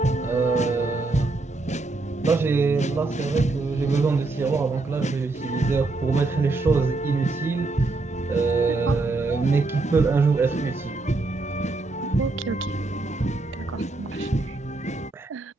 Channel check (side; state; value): left; quieter; 3.4 dB